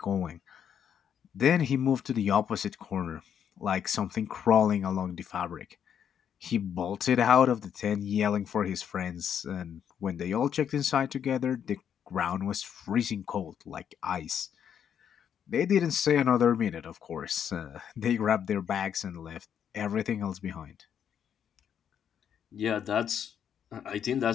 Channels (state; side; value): quieter; right; 8.6 dB